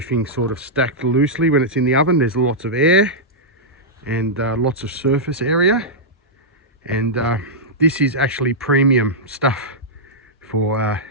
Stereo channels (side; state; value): both; normal; correlation -0.09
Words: sort of stacked loosely when it's in the oven, there's lots of air and lots of surface area, and this is actually premium stuff for